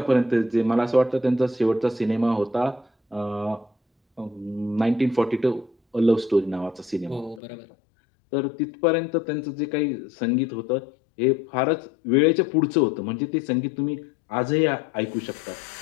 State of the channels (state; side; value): drops out; right; at 7.4 s